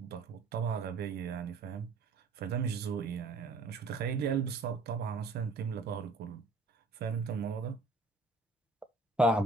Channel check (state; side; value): quieter; left; 3.5 dB